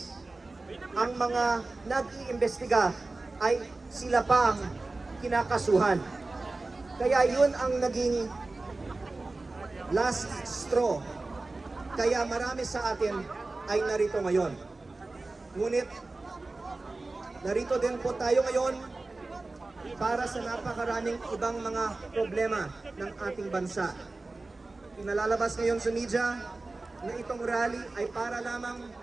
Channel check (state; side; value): quieter; left; 3.3 dB